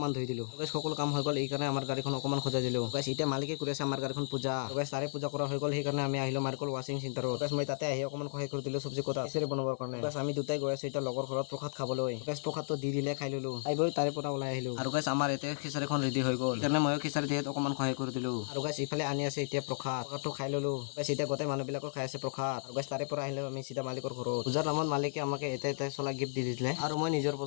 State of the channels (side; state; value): right; silent; digital silence